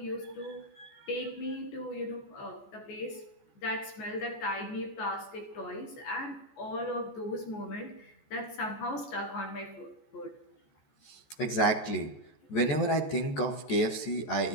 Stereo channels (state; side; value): late; right; 14 ms